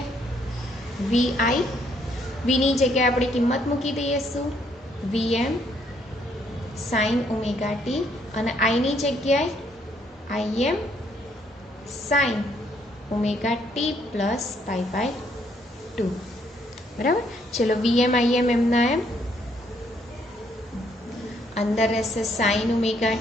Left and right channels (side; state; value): both; normal; correlation 0.70